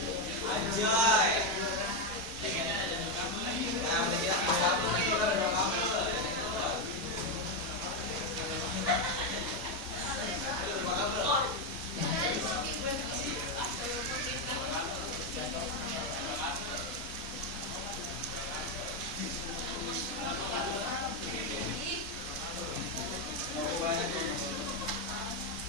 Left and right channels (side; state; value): both; normal; correlation 0.06